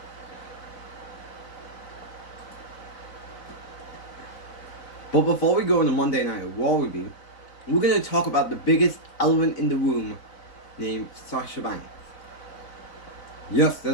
But before we go into Monday Night Raw review, we're going to talk about the biggest elephant in the room named Sasha Banks. Yes,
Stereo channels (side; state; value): right; late; 4.0 ms